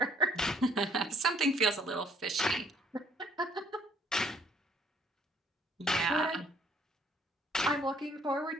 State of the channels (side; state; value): both; normal; correlation 0.62